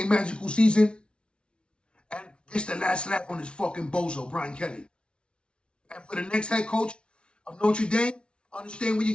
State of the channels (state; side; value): late; right; 0.058 ms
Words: magical season, and gets the last laugh on this fucking bozo, Brian Kelly. And for the next head coach of Notre Dame, understand what